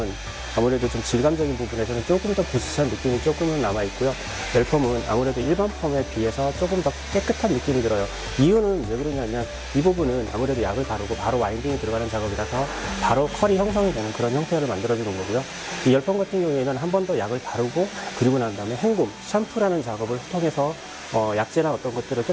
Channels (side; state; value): both; identical; correlation 1.00